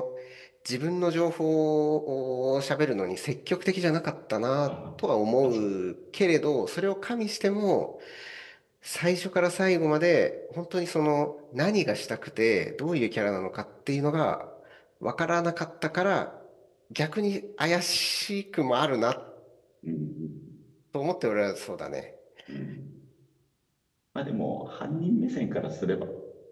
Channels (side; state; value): both; identical; correlation 1.00